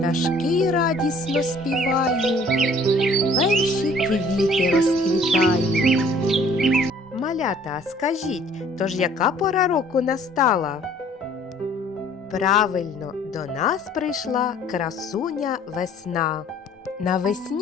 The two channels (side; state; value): both; normal; correlation 0.55